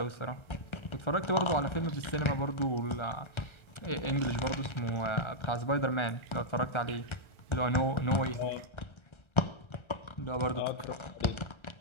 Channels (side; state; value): right; late; 1.3 ms